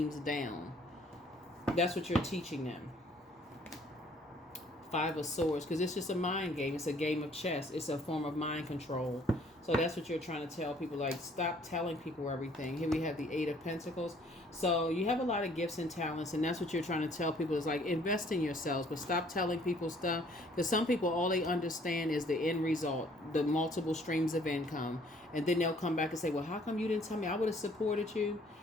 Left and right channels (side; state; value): both; normal; correlation 0.60